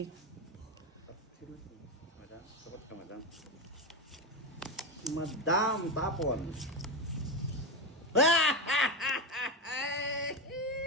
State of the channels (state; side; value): normal; both; correlation 0.14